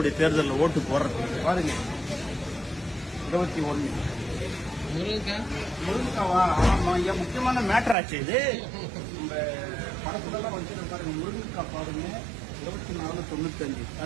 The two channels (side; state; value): left; drops out; at 8.0 s